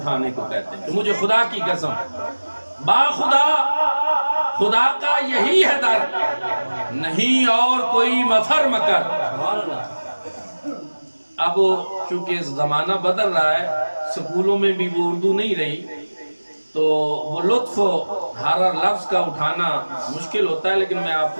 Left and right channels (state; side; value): inverted; both; correlation -1.00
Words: کو کہتے ہیں کہ مجھے خدا کی قسم، با خدا، خدا کا یہی ہے در، نہیں اور کوئی مفر مکر۔ اب چونکہ زمانہ بدل رہا ہے، سکولوں میں بھی وہ اردو نہیں رہی، تو وہ لطف ہر لفظ کا اٹھانا مشکل ہوتا ہے، لیکن میں آپ